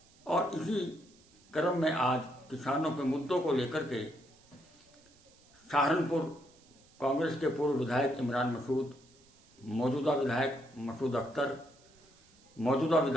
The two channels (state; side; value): noise; right; hiss, 29 dB below the sound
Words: और इसी क्रम में आज किसानों के मुद्दों को लेकर के सहारनपुर कांग्रेस के पूर्व विधायक इमरान मसूद, मौजूदा विधायक मसूद अख्तर, मौजूदा